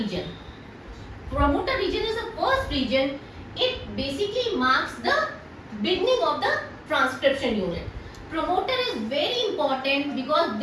Promoter region is the first region. It basically marks the beginning of the transcription unit. Promoter is very important because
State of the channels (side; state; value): both; identical; correlation 1.00